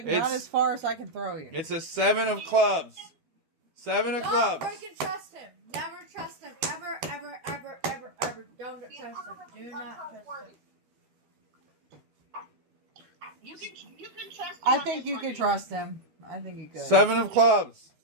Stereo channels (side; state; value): left; late; 12 ms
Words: It's- not as far as I can throw you. It's a 7 of clubs. 7 of Don't clubs. freaking trust him. Never trust him. Ever, ever, ever, ever, ever. Don't trust him. Do not trust him. You can trust him. I on think this you one, could Neener. trust him. I think you could. 7 of clubs.